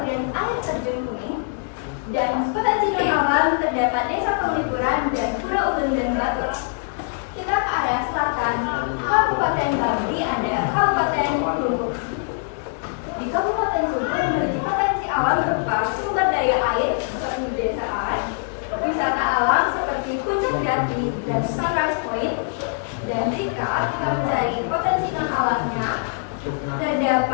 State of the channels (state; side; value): silent; right; digital silence